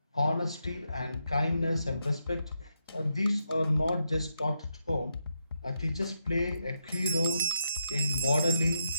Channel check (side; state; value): both; inverted; correlation -0.81